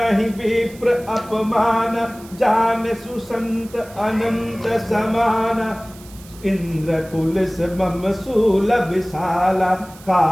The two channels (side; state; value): right; noise; hiss, 22 dB below the sound